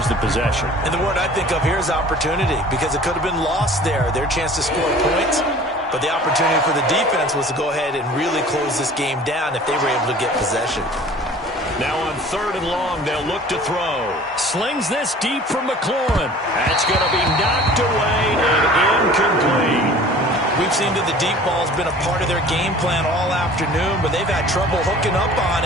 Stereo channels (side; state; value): both; normal; correlation 0.46